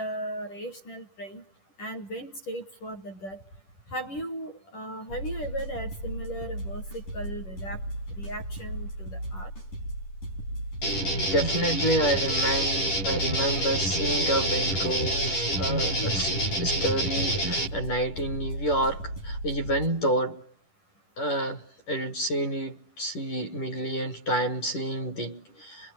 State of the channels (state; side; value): late; right; 10 ms